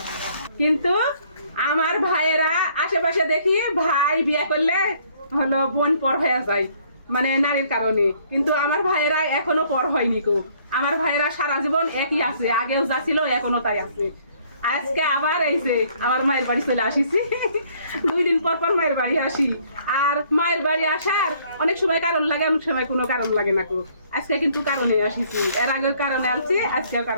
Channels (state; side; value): inverted; both; correlation -0.62